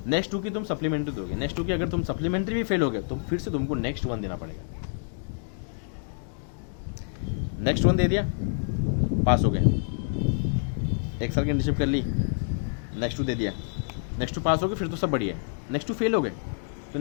नेक्स्ट 2 की तुम सप्लीमेंट्री दोगे, नेक्स्ट 2 की अगर तुम सप्लीमेंट्री भी फेल हो गए तो फिर से तुमको नेक्स्ट 1 देना पड़ेगा। नेक्स्ट 1 दे दिया, पास हो गए, 1 साल की इंटर्नशिप कर ली, नेक्स्ट 2 दे दिया, नेक्स्ट 2 पास हो गए, फिर तो सब बढ़िया है। नेक्स्ट 2 फेल हो गए तो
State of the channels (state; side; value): silent; right; digital silence